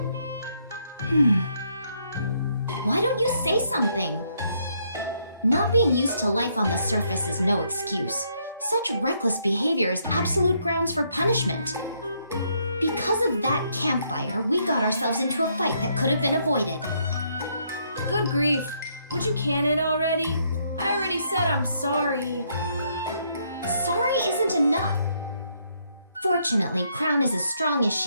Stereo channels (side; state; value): both; inverted; correlation -0.72